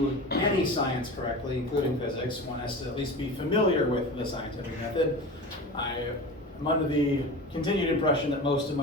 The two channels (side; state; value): both; normal; correlation 0.31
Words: any science correctly, including physics, one has to at least be familiar with the scientific method. I'm under the continued impression that most of